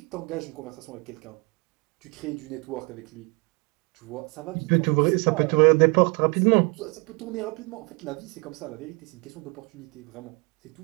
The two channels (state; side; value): quieter; left; 30.6 dB